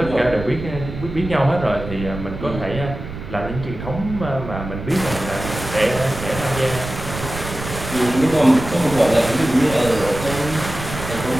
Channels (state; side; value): noise; right; rumble, 9 dB below the sound